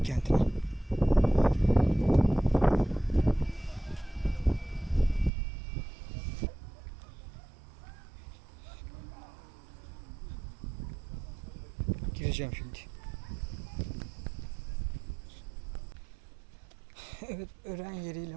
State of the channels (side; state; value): left; drops out; at 5.3 s